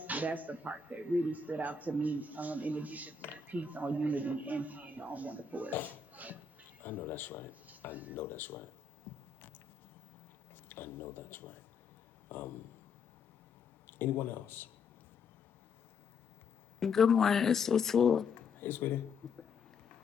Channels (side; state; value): right; quieter; 4.6 dB